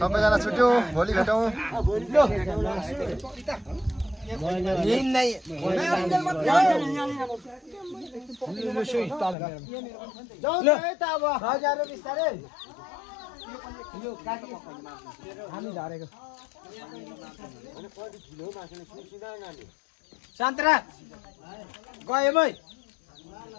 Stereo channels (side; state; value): right; drops out; at 9.3 s